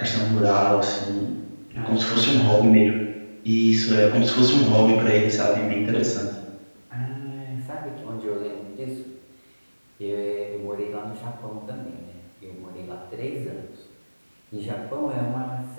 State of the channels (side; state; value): both; inverted; correlation -1.00